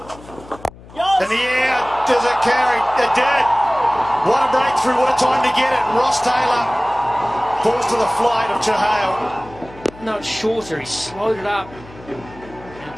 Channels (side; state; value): left; noise; hum, 20 dB below the sound